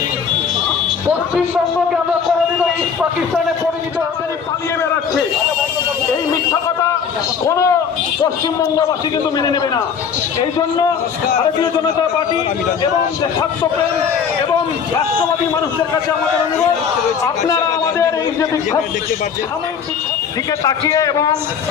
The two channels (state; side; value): quieter; right; 6.8 dB